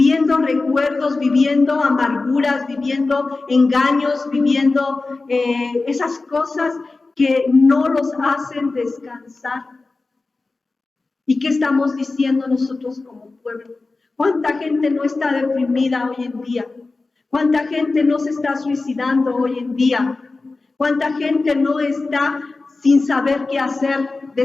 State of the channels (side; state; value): right; quieter; 3.6 dB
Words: recuerdos, viviendo amarguras, viviendo engaños, viviendo esas cosas que no los hacen descansar? ¿Y qué estamos diciendo nosotros como pueblo? ¿Cuánta gente no está deprimida hoy en día? ¿Cuánta gente no se está suicidando hoy en día? ¿Cuánta gente no está sin saber qué hacer,